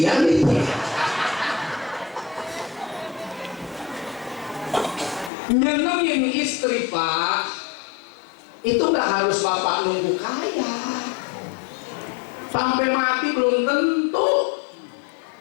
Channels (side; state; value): right; drops out; at 5.3 s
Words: nih. Nyenengin istri Pak, itu nggak harus Bapak nunggu kaya. Sampai mati belum tentu.